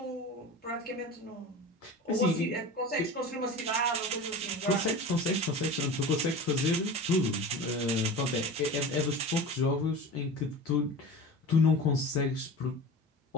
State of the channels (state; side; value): normal; both; correlation 0.32